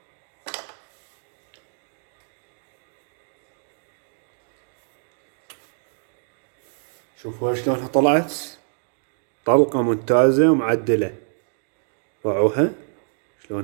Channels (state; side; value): silent; left; digital silence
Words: شوفوا شلونها طلعت، طلقة ممتازة ومعدلة. باعوها